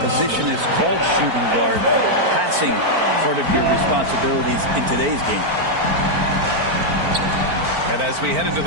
is called shooting guard, passing part of your responsibilities in today's game. And as we head into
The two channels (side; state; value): left; late; 4.4 ms